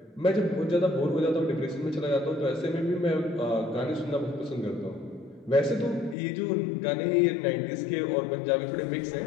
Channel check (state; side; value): drops out; right; at 6.2 s